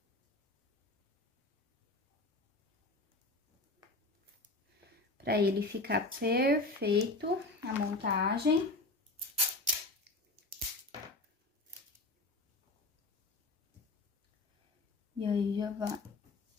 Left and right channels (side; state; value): right; quieter; 3.0 dB